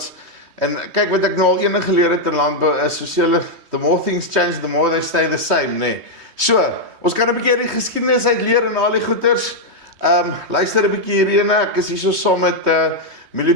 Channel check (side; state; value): left; late; 3.2 ms